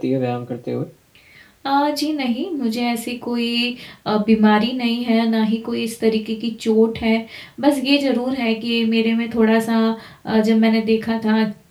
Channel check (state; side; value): identical; both; correlation 1.00